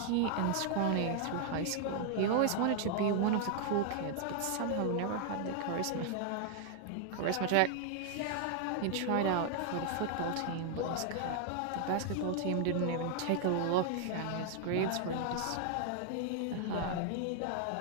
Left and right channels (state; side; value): different; both; correlation 0.00